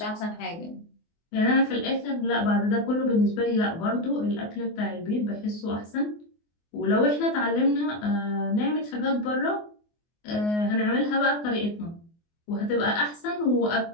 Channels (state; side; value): late; right; 24 ms